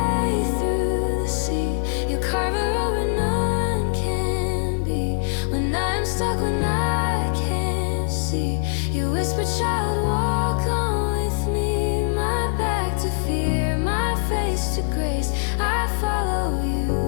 through the sea, you carve a road where none can be. When I'm stuck, when I can't see, you whisper, child, walk on with me. My back to fear, my face to grace, I follow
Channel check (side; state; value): right; silent; digital silence